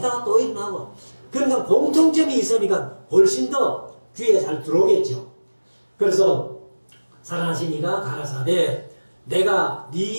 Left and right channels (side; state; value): both; inverted; correlation -1.00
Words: 또 일어나고 그러니까 공통점이 있으니까 훨씬 더 귀에 잘 들어오겠죠. 그래서 살아나신 이가 가라사대 내가